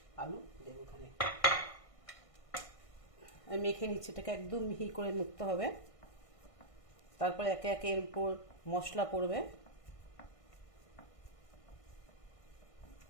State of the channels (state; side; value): late; right; 1.6 ms